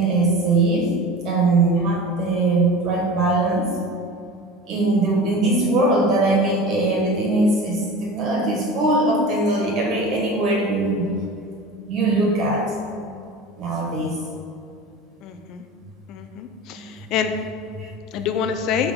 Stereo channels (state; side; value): normal; both; correlation 0.34